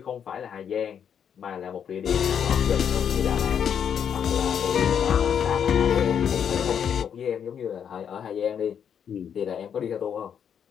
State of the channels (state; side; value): quieter; right; 8.1 dB